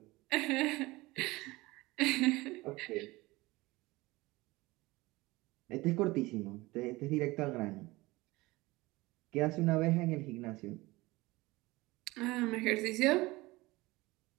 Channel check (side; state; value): left; quieter; 21.0 dB